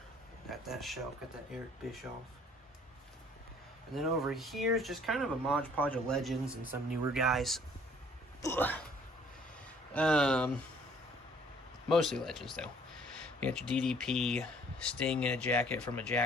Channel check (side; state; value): both; normal; correlation 0.58